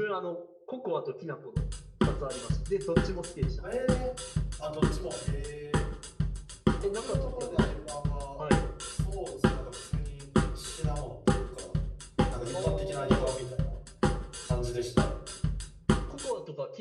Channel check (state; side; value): identical; both; correlation 1.00